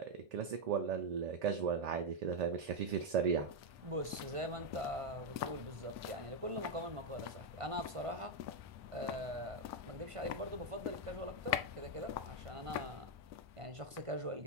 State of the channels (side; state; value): left; late; 1.5 ms